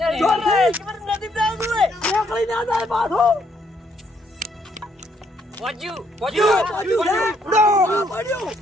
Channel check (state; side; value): normal; both; correlation 0.71